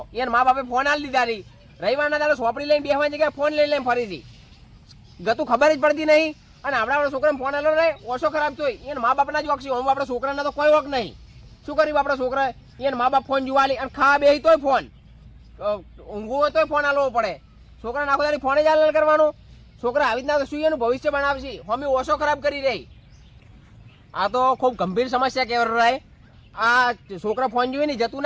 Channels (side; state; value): both; identical; correlation 1.00